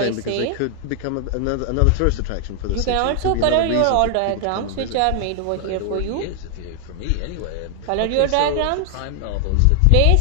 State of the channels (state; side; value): different; both; correlation 0.00